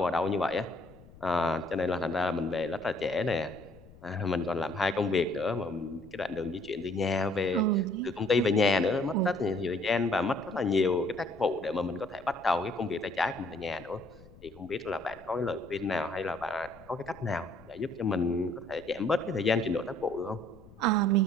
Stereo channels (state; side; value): noise; left; rumble, 22 dB below the sound